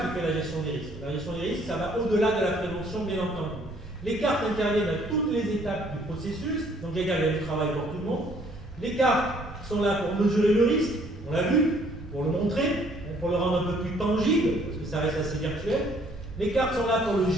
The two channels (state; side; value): normal; both; correlation 0.62